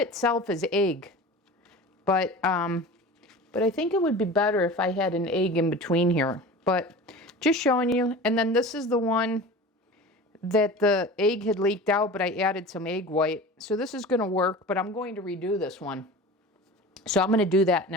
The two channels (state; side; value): normal; both; correlation 0.35